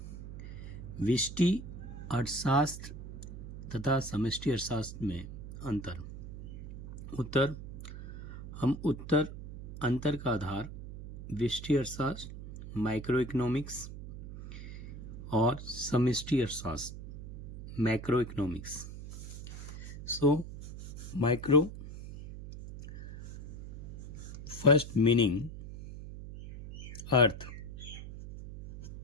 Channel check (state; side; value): noise; right; hum, 11 dB below the sound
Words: व्यष्टि अर्थशास्त्र तथा समष्टि अर्थशास्त्र में अंतर। उत्तर हम उत्तर अंतर का आधार व्यष्टि अर्थशास्त्र, माइक्रो इकोनॉमिक्स और समष्टि अर्थशास्त्र macro economics. So micro first meaning अर्थ,